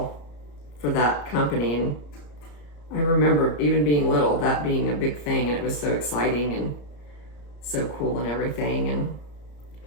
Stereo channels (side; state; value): right; late; 34 ms